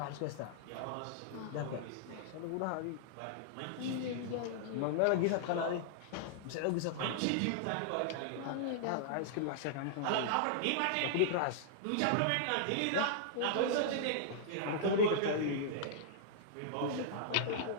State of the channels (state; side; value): different; both; correlation -0.01